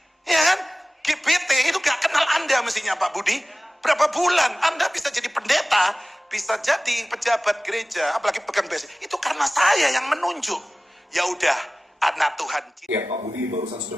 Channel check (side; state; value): both; normal; correlation 0.97